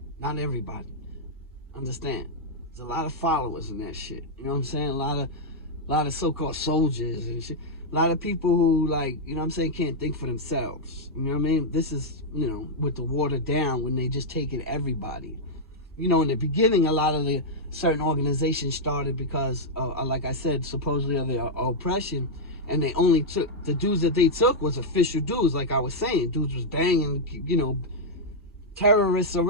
Not everybody. Understand? There's a lot of followers in that shit. You know what I'm saying? A lot of so-called soldiers and shit. A lot of people who, like, you know what I'm saying, can't think for themselves. You know what I mean? This is, you know, with the watered down when they just taking everybody. You know, in the beginning, a lot of the certain organizations started because, like I said, supposedly of the oppression, and they only took, the dudes that they took was official dudes, like I was saying. Dudes was banging, you know, terrorists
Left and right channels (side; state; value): both; normal; correlation -0.04